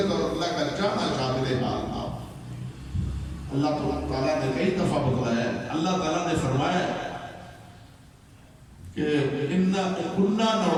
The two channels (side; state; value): both; identical; correlation 1.00